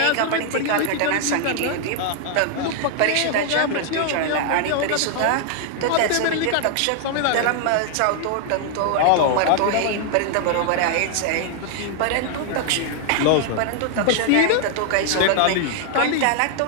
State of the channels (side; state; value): both; different; correlation 0.00